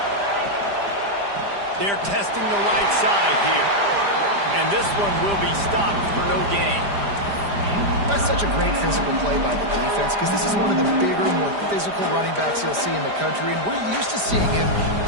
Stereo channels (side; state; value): left; late; 5.0 ms